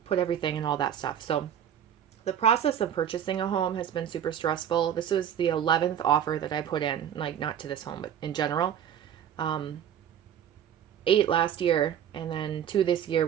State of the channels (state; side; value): quieter; left; 9.5 dB